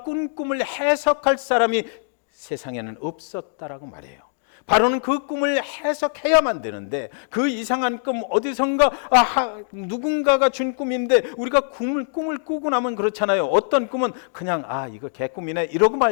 꾼 꿈을 해석할 사람이 세상에는 없었다라고 말해요. 바로는 그 꿈을 해석해야만 되는데 그 이상한 꿈 어디선가 누군가가 준 꿈인데 우리가 꿈을 꾸고 나면 그렇잖아요. 어떤 꿈은 그냥 이거 개꿈이네 이러고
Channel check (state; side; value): silent; right; digital silence